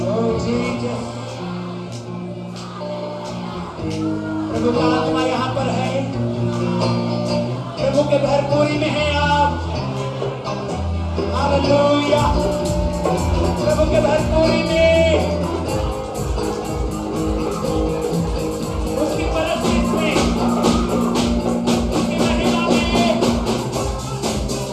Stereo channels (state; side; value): identical; both; correlation 1.00